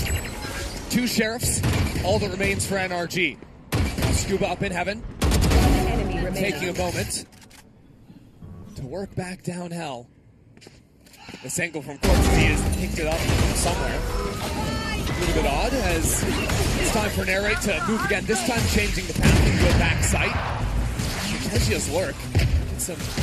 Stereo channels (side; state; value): both; identical; correlation 1.00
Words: 2 sheriffs, all that remains for NRG. Now Skuba up in heaven, taking a moment to work back down hell. This angle from cortezia has picked it up somewhere. A little bit odd as it's time for N4RRATE to move again, this time changing the path into a back sight. Cortezia's lurk. Some